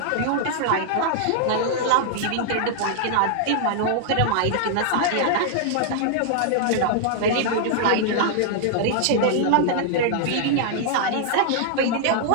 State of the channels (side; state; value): both; different; correlation -0.01